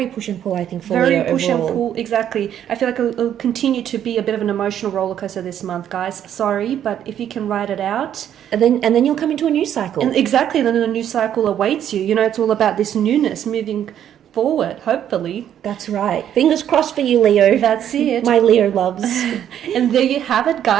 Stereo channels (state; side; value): quieter; left; 10.1 dB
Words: push and pull, I think, for Leo push overall. and pull, exactly. I feel like it'll continue to be a bit of an emotional roller coaster this month, guys. Sorry, but if you can ride it out, and then you'll come into a new cycle. And exactly, then a new cycle awaits you. You know, it's all about this newness, moving forward, hopefully. That's right. Fingers crossed for you, Leo. That's it. My Leo loves. And there you have it,